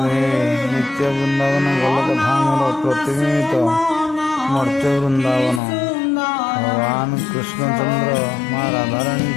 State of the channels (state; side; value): drops out; right; at 5.6 s